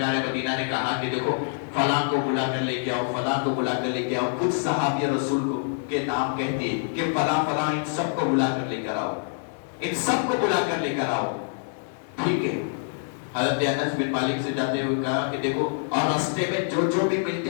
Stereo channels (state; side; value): silent; right; digital silence